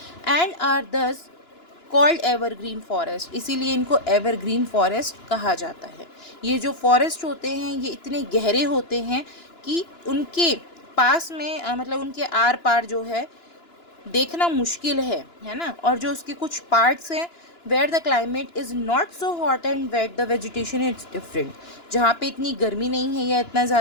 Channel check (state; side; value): late; right; 2.9 ms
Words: एंड आर दस कॉल्ड एवरग्रीन फॉरेस्ट, इसीलिए इनको एवरग्रीन फॉरेस्ट कहा जाता है। ये जो फॉरेस्ट होते हैं ये इतने गहरे होते हैं कि उनके पास में मतलब उनके आर पार जो है देखना मुश्किल है ना। और जो उसके कुछ पार्ट्स हैं where the climate is not so hot and wet, the vegetation is different, जहाँ पे इतनी गर्मी नहीं है या इतना